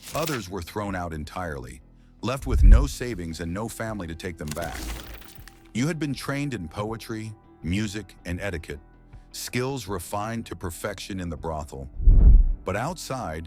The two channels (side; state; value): both; identical; correlation 1.00